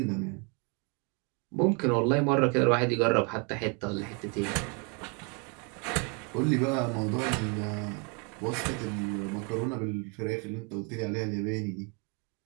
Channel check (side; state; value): left; quieter; 34.4 dB